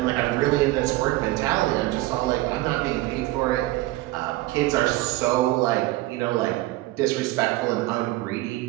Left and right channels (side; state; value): left; quieter; 18.4 dB